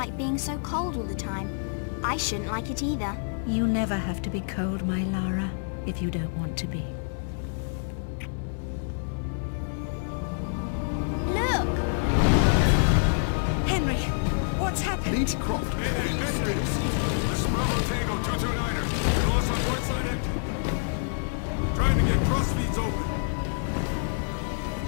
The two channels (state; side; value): silent; right; digital silence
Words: being so cold all the time. I shouldn't like it either. You never have to be cold, my Lara, if you don't want to be. Look! Henry, what's happened? Lady Croft, please stay seated. This is Bravo Tango 229er. We lost our port side engine. Trying to get crossfeeds open.